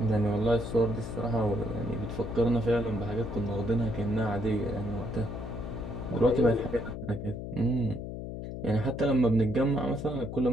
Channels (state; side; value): noise; left; hum, 7 dB below the sound